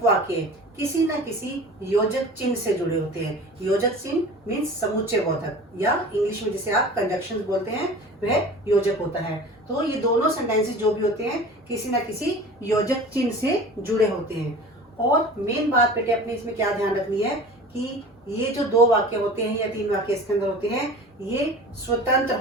किसी न किसी योजक चिन्ह से जुड़े होते हैं। योजक चिन्ह मीन्स समुच्चय बोधक, या इंग्लिश में जिसे आप कंजक्शन बोलते हैं, वह योजक होता है। तो ये दोनों सेंटेंसेस जो भी होते हैं किसी न किसी योजक चिन्ह से जुड़े होते हैं। और मेन बात बेटे अपने इसमें क्या ध्यान रखनी है कि ये जो 2 वाक्य होते हैं या 3 वाक्य इसके अंदर होते हैं, ये स्वतंत्र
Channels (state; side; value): normal; both; correlation 0.39